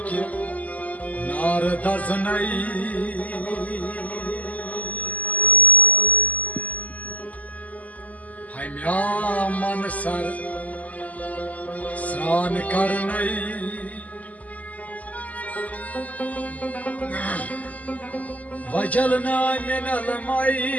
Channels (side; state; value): right; late; 0.075 ms